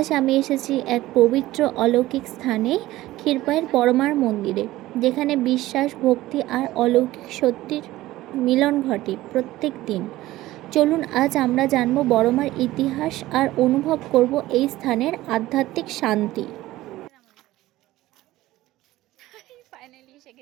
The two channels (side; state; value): left; quieter; 16.6 dB